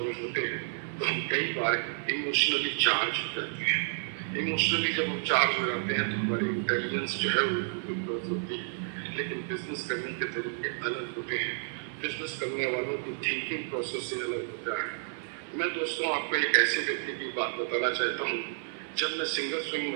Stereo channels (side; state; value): left; silent; 57 dB below the other